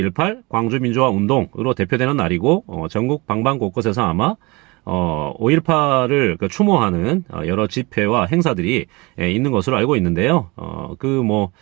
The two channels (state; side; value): quieter; left; 25.1 dB